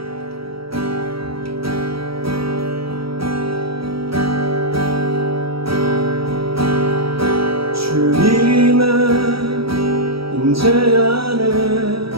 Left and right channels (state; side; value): late; left; 0.75 ms